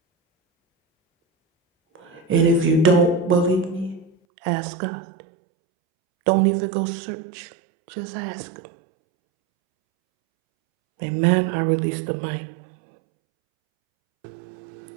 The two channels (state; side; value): drops out; left; at 4.1 s